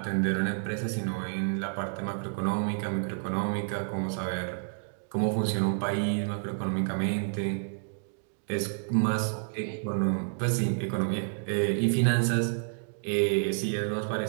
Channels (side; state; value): left; silent; digital silence